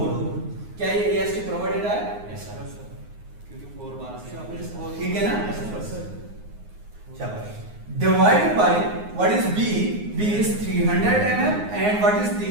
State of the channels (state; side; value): late; left; 9.6 ms